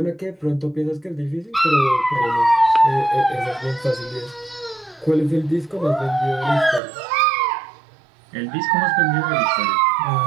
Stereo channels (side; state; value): left; drops out; at 6.8 s